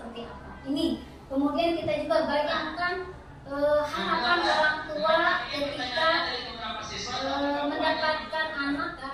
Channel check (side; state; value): both; identical; correlation 1.00